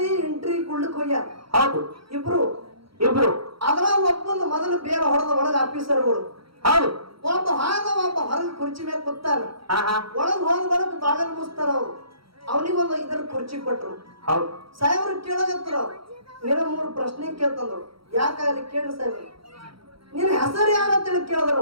ಎಂಟ್ರಿ ಕೊಡ್ಲಿಕ್ ಹೋಗ್ಯಾರ. ಹೌದು ಇಬ್ರು ಇಬ್ರು ಅದ್ರ ಒಬ್ಬೊಂದು ಮೊದಲು ಬೇರೆ ಹೊಡೆದ ಒಳಗ ಆಫೀಸರ್ಗಳು. ಹೌದು ಒಬ್ಬ ಒಬ್ಬ ಹೊರಗೆ ಕುರ್ಚಿ ಮೇಲೆ ಕೂತಾನ. ಹಾ ಒಳಗ್ ಹೋದ ಬರಕ್ ಬಾಗಲ್ ಮುಸ್ತಾರ ಅವ್ರು. ಅವನಿಗೊಂದು ಇದರ ಕುರ್ಚಿ ಕೊಟ್ರು. ಹೌದು ಸಾಹೇಬ್ರು ಕೇಳಗತ್ರ ನಿನ್ನ 3 ಪ್ರಶ್ನೆ ಕೇಳ್ತಂದ್ರು. ಯಾಕಾಗಲಿ ಕೇಳ್ರಿ ಸಾಹೇಬ್ರು, ನಿನ್ನ ಹೆಸರು ಯಾರಂತೇಳಿ ಕೇಳಿದ್ರು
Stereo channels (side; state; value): left; late; 0.75 ms